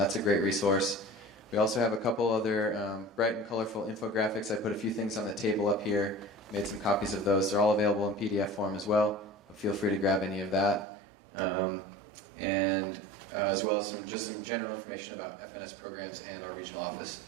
a great resource. We also have a couple other bright and colorful infographics. I put a few things on the table up here, made some copies of those. They're all available in PDF form as well. Feel free to grab any of that. And as well as some general information about FNS programs and our regional office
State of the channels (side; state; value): left; drops out; at 10.9 s